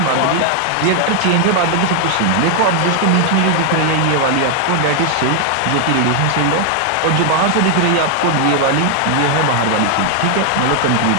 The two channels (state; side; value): different; both; correlation 0.00